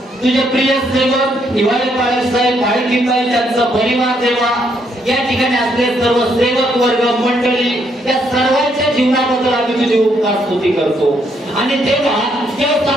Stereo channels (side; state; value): both; normal; correlation 0.73